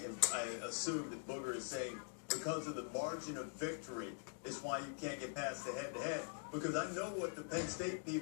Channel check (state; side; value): silent; right; digital silence